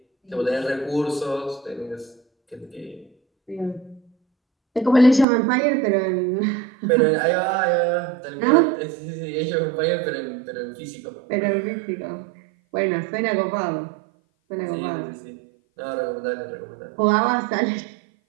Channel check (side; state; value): left; drops out; at 5.2 s